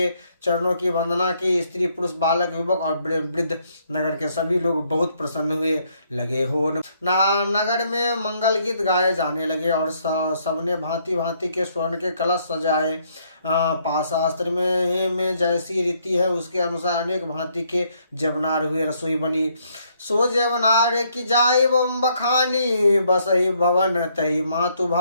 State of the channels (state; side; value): inverted; both; correlation -0.70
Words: चरणों की वंदना की। स्त्री पुरुष बालक युवक और वृद्ध नगर के सभी लोग बहुत प्रसन्न हुए लगे हो। नगर में मंगल गीत गाए जाने लगे और सबने भांति भांति के स्वर्ण के कलश सजाए। पाशास्त्र में जैसी रीति है उसके अनुसार अनेक भांति के जवनार हुए। रसोई बनी सो जवनार की जाय बखानी, बसहि भवन तही मातु